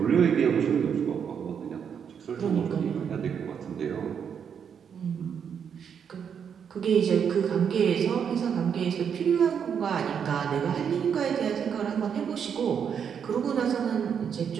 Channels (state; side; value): quieter; left; 7.5 dB